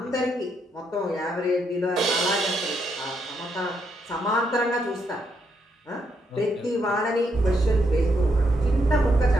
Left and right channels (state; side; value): normal; both; correlation 0.77